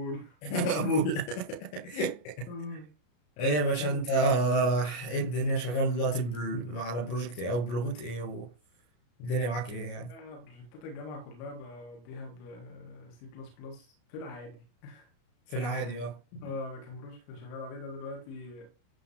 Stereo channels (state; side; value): late; right; 33 ms